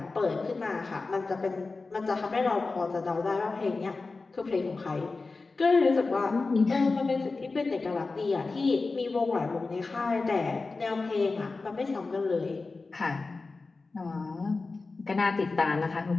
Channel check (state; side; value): quieter; right; 3.8 dB